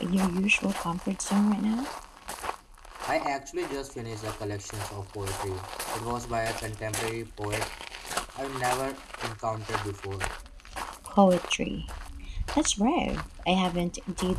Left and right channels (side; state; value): both; identical; correlation 1.00